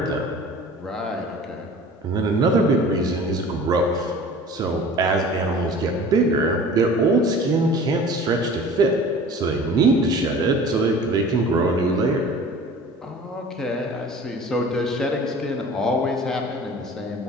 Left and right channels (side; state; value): both; normal; correlation 0.43